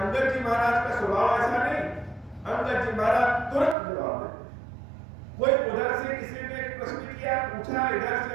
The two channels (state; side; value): drops out; left; at 3.8 s